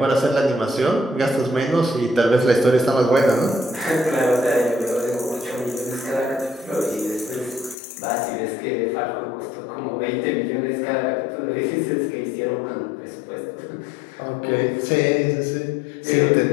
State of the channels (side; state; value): right; drops out; at 7.8 s